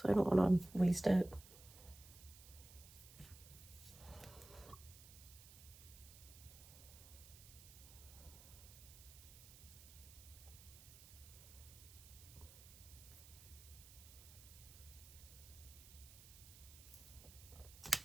I don't want to waste it.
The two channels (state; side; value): noise; right; hiss, 18 dB below the sound